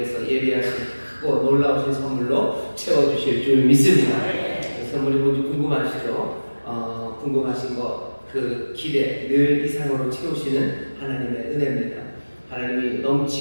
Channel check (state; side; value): inverted; both; correlation -1.00